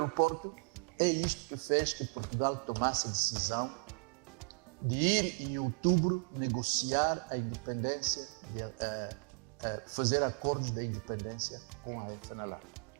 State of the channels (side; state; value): left; quieter; 36.1 dB